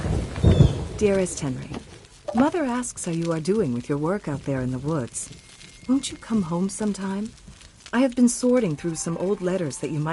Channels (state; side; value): identical; both; correlation 1.00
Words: Dearest Henry, Mother asks how you are doing with your work out there in the woods. Won't you come home sometime? I have been sorting through some old letters that you